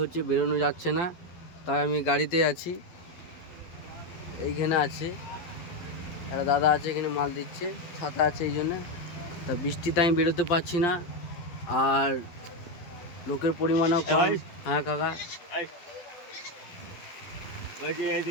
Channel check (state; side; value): late; right; 12 ms